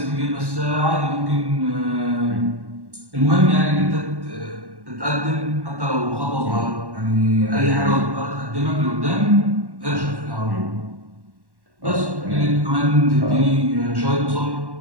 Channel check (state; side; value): late; left; 1.1 ms